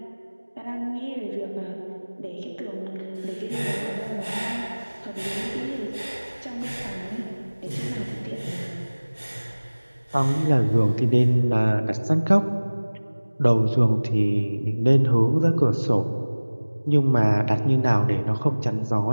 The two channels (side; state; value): both; inverted; correlation -1.00